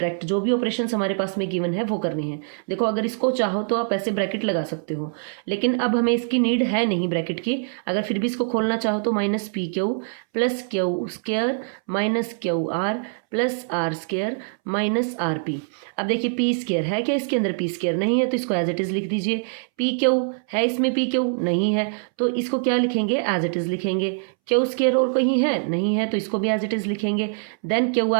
जो भी ऑपरेशंस हमारे पास में गिवन है वो करने हैं। देखो अगर इसको चाहो तो आप ऐसे ब्रैकेट लगा सकते हो, लेकिन अब हमें इसकी नीड है नहीं ब्रैकेट की। अगर फिर भी इसको खोलना चाहो तो minus P Q plus Q square minus Q R plus R square minus R P. अब देखिए पी स्क्वायर है क्या इसके अंदर, पी स्क्वायर नहीं है तो इसको एज इट इज लिख दीजिए। पी क्यू है इसमें, पी क्यू नहीं है तो इसको क्या लिखेंगे, एज इट इज लिखेंगे। क्यू स्क्वायर और कहीं है, नहीं है तो इसको भी एज इट इज लिखेंगे। देन क्यू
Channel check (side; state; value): left; silent; 63 dB below the other